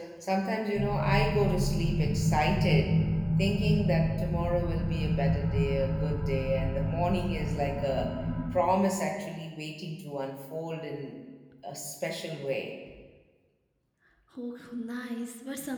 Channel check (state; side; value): identical; both; correlation 1.00